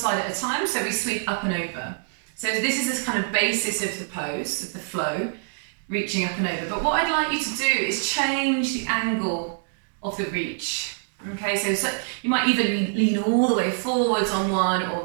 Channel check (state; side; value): silent; left; digital silence